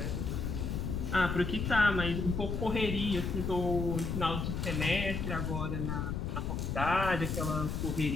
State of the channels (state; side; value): noise; left; rumble, 2 dB below the sound